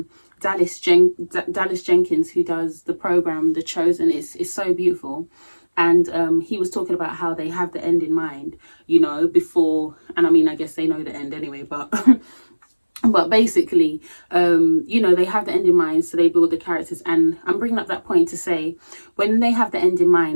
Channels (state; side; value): inverted; both; correlation -1.00